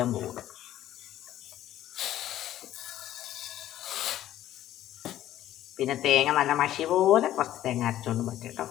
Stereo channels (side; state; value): right; quieter; 12.9 dB